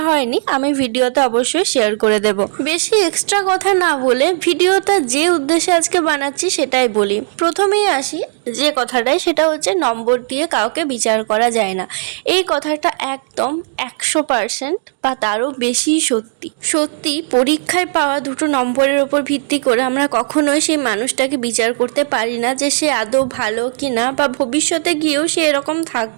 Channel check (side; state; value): left; silent; digital silence